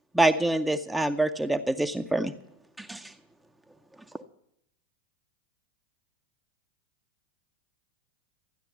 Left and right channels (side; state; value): both; normal; correlation 0.86